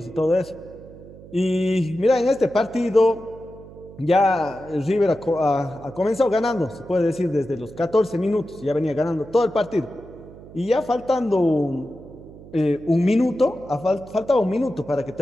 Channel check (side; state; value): right; noise; hum, 19 dB below the sound